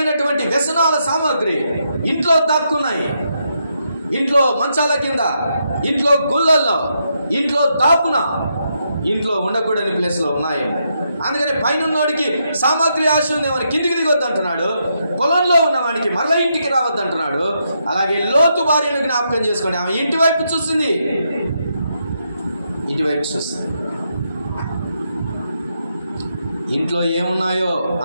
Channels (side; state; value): both; inverted; correlation -0.80